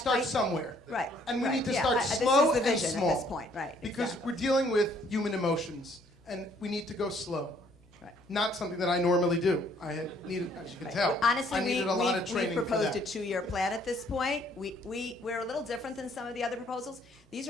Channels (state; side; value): normal; both; correlation 0.63